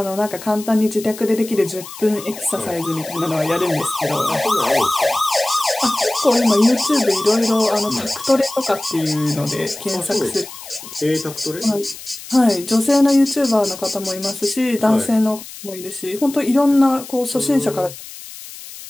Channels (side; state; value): left; noise; hiss, 14 dB below the sound